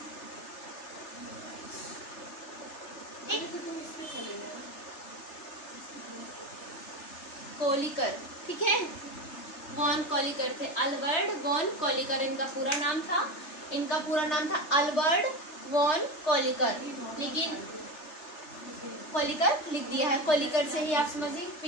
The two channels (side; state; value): right; late; 3.4 ms